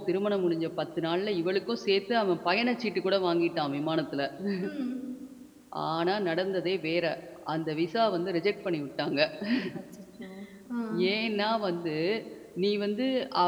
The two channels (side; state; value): both; identical; correlation 1.00